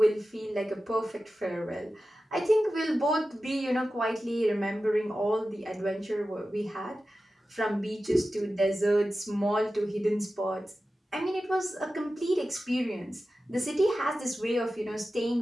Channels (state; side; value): normal; both; correlation 0.94